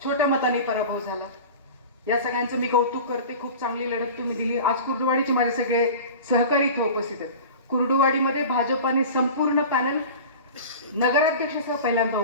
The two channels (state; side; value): inverted; both; correlation -0.36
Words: छोट्या मतांनी पराभव झाला. या सगळ्यांचं मी कौतुक करते. खूप चांगली लढत तुम्ही दिली. आज कुर्डुवाडीचे माझे सगळे सहकारी इथे उपस्थित आहेत. कुर्डुवाडीमध्ये भाजपाने संपूर्ण पॅनल नगराध्यक्षासह पहिल्यांदा